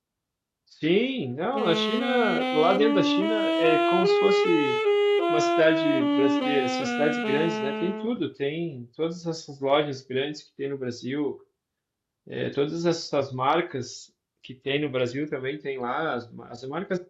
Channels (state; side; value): identical; both; correlation 1.00